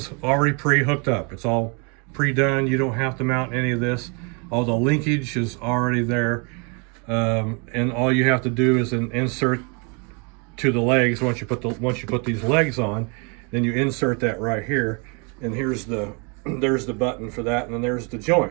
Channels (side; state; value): left; quieter; 34.2 dB